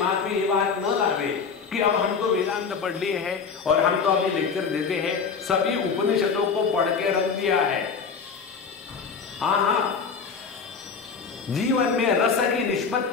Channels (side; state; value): right; quieter; 5.7 dB